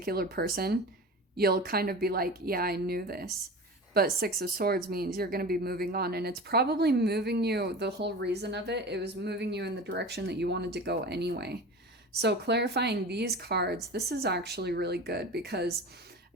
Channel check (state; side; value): normal; both; correlation 0.33